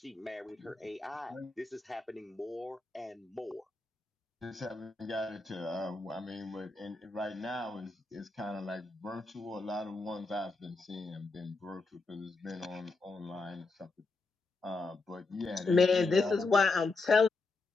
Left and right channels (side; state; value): right; quieter; 3.6 dB